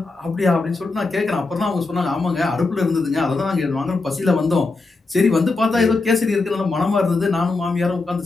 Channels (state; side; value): quieter; right; 3.6 dB